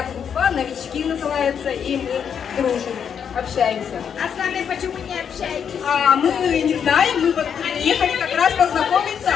группа, новички называется, и мы дружим, общаемся. А с вами почему не общаетесь? А мы не знаем, мы вот приехали как раз познакомиться.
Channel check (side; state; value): right; quieter; 7.7 dB